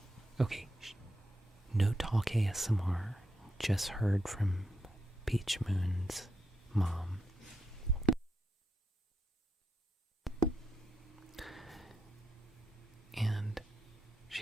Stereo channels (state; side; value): normal; both; correlation 0.84